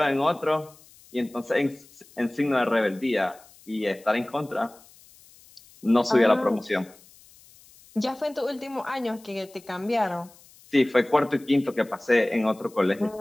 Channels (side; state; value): left; noise; hiss, 26 dB below the sound